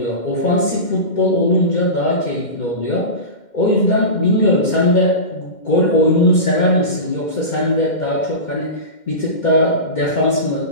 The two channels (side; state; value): right; late; 2.1 ms